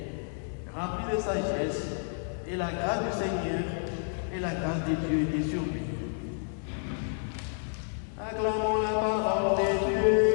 rempli de sagesse, et la grâce du Seigneur et la grâce de Dieu étaient sur lui. Acclamons la parole de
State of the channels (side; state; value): right; silent; digital silence